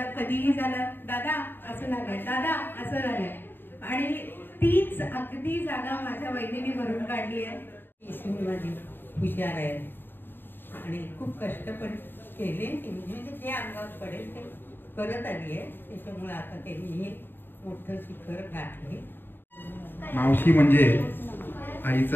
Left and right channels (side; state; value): right; late; 0.097 ms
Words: कधीही झालं दादा असं झालंय, दादा असं झालंय. आणि तीच अगदी जागा माझ्या वहिनीने भरून काढली आहे. ईश्वरी माझी हुशार आहे आणि खूप कष्ट पण केले, म्हणजे जे अंगावर पडेल ते करत आली आहे. त्याच्यामुळे आता त्यांनी हे मोठं शिखर गाठले. मावशी म्हणजे